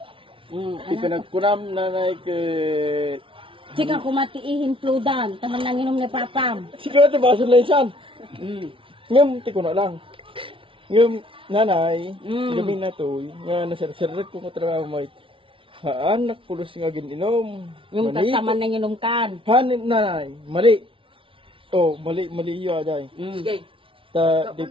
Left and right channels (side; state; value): left; late; 0.25 ms